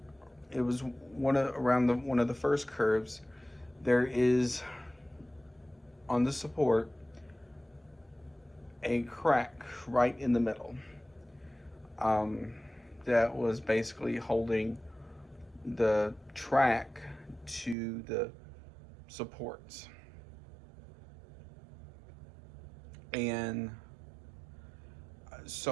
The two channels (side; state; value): left; drops out; at 17.8 s